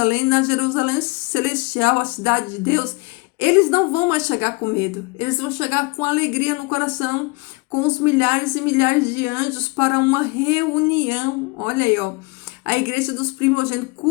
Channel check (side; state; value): right; quieter; 27.1 dB